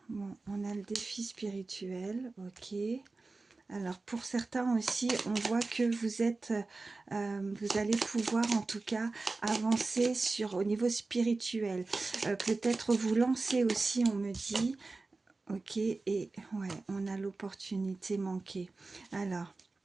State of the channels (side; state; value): left; quieter; 3.6 dB